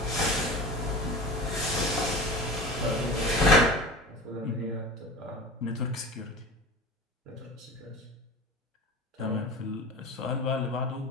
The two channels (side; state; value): both; normal; correlation 0.34